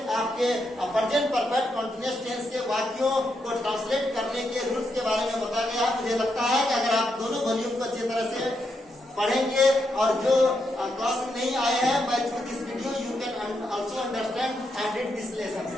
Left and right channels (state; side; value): normal; both; correlation 0.81